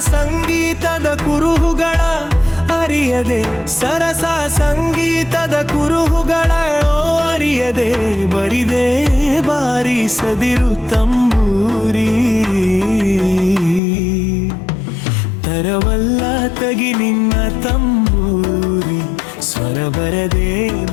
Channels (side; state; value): right; drops out; at 13.8 s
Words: ಸಂಗೀತದ ಕುರುಹುಗಳ ಅರಿಯದೆ, ಸರಸ ಸಂಗೀತದ ಕುರುಹುಗಳ ಅರಿಯದೆ ಬರಿದೆ ಬಾರಿಸದಿರು ತಂಬೂರಿ. ತರವಲ್ಲ ತಗಿ ನಿನ್ನ ತಂಬೂರಿ, ಸ್ವರ ಬರದೆ